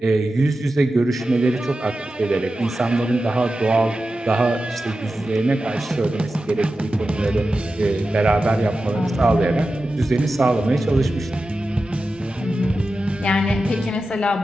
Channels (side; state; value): both; normal; correlation 0.92